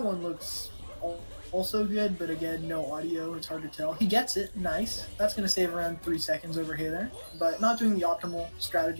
one looks also good, but again, no audio. It's hard to tell. He gets it. Nice. That's going to save around 3 seconds over Hey There. But not doing the optimal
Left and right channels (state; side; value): inverted; both; correlation -1.00